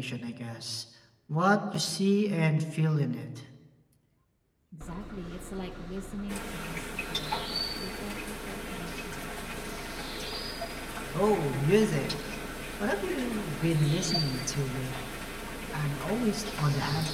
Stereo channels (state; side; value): identical; both; correlation 1.00